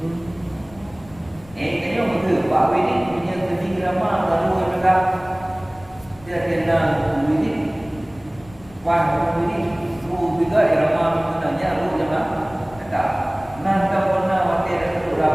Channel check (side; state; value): left; noise; rumble, 22 dB below the sound